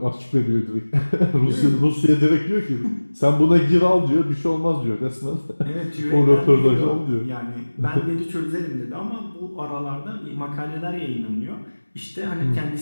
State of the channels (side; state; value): both; inverted; correlation -1.00